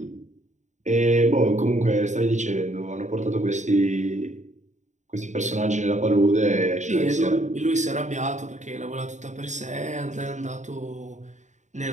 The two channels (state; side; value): late; left; 0.35 ms